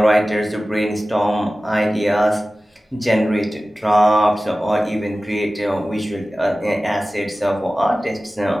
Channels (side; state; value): both; normal; correlation 0.96